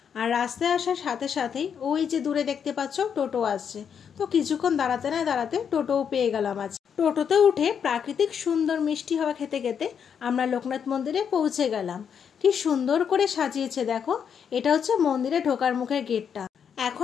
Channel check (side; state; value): right; quieter; 7.5 dB